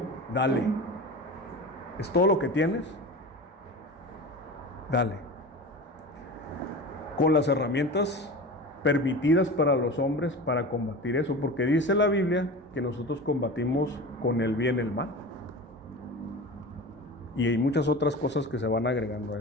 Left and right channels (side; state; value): both; normal; correlation 0.32